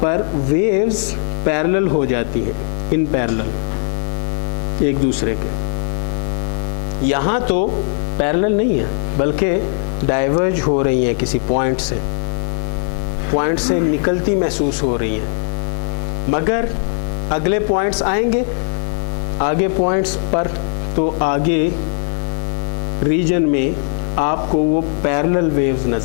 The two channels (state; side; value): silent; right; 67 dB below the other